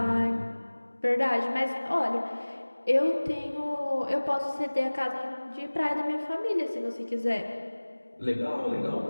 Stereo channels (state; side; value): inverted; both; correlation -1.00